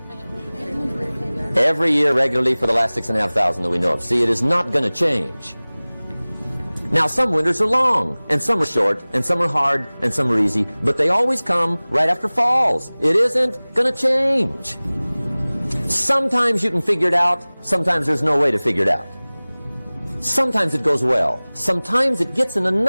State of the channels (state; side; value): inverted; both; correlation -1.00